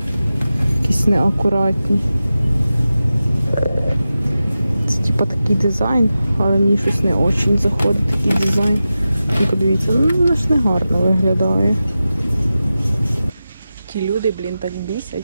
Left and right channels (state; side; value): inverted; both; correlation -0.93